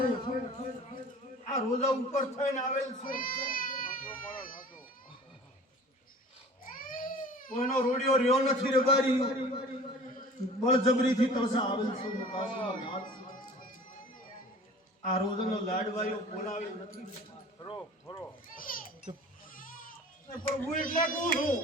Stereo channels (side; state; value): both; normal; correlation 0.44